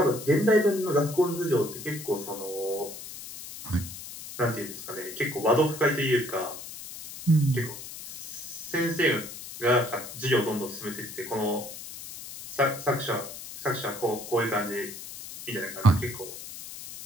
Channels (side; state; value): left; noise; hiss, 12 dB below the sound